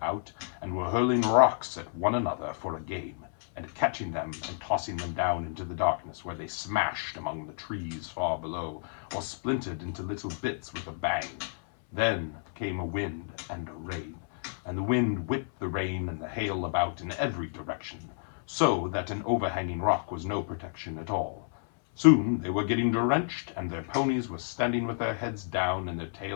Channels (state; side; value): silent; right; 57 dB below the other